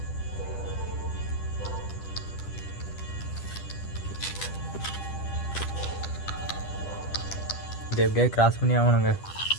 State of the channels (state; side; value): late; right; 10 ms